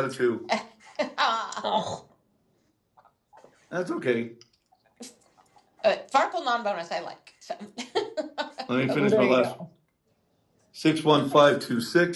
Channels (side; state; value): both; identical; correlation 1.00